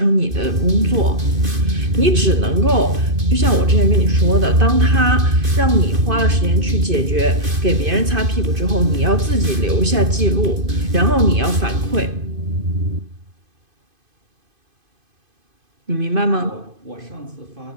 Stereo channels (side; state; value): left; late; 2.5 ms